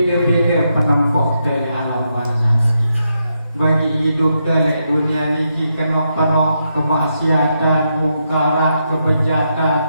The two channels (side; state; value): both; inverted; correlation -0.82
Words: penempuh dari alam barzah. Bagi hidup dari dunia ini kena penuh kemaksiatan, mungkarat, kebejatan.